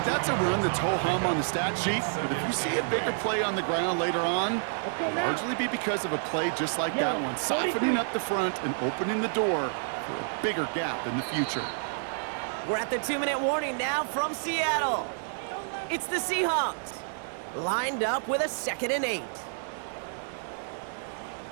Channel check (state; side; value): silent; left; digital silence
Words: that's a run that's ho-hum on the stat sheet, but if you see a bigger play on the ground later on, it'll largely be because of a play just like that one, softening up the front and opening the door for a bigger gap in the future. We're at the 2-minute warning now from Seattle. It's the Seahawks, lined up with a 2nd and 8.